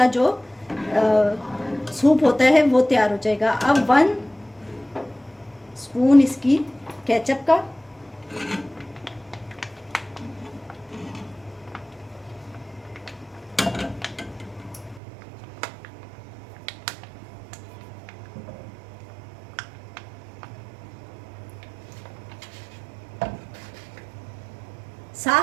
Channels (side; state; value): left; drops out; at 15.0 s